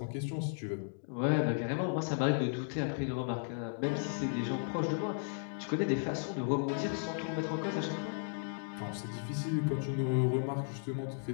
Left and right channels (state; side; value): silent; right; digital silence